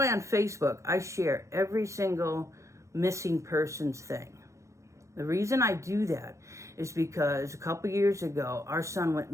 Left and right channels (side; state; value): left; late; 0.15 ms